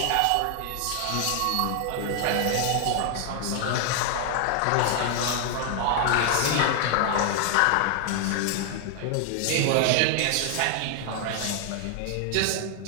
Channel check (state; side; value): different; both; correlation 0.00